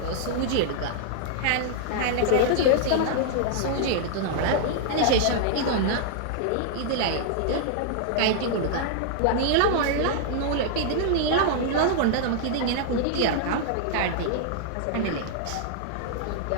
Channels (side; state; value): both; different; correlation -0.01